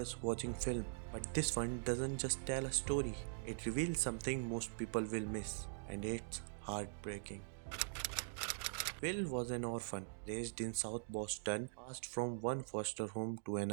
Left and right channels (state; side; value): silent; left; digital silence